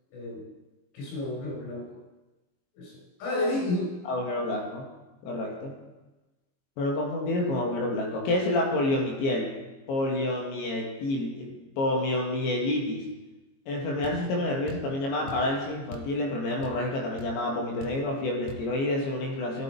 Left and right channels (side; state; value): right; late; 22 ms